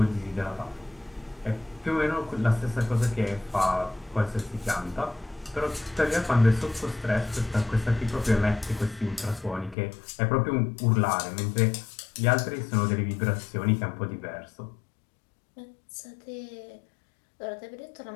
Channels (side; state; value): right; drops out; at 9.8 s